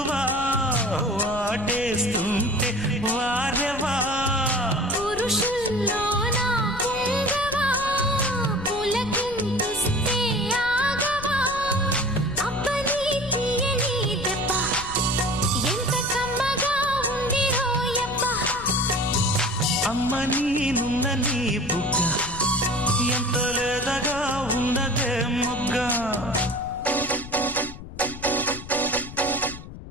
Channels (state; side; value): noise; left; rumble, 13 dB below the sound